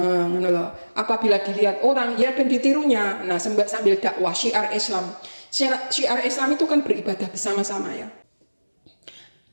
Apabila dilihat orang ya ben ditirunya. Nah sambil dakwah syiar Islam. Syiar Islam itu kan beribadah bersama-sama ya.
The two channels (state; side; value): inverted; both; correlation -1.00